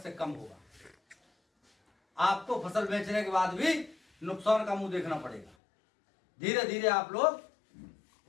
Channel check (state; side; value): drops out; right; at 5.6 s